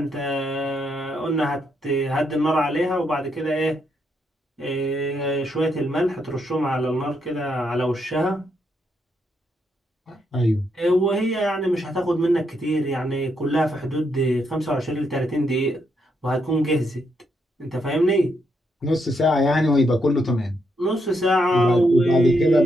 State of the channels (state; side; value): normal; both; correlation 0.78